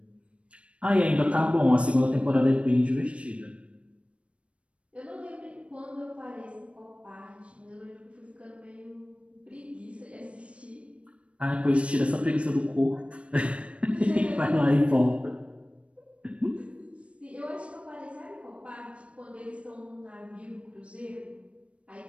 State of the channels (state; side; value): late; left; 0.061 ms